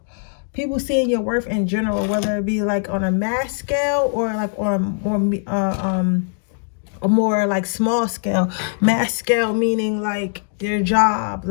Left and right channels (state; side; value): silent; right; 56 dB below the other